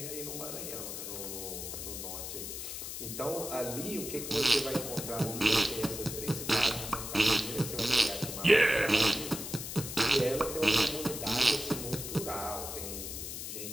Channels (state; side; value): noise; left; hiss, 7 dB below the sound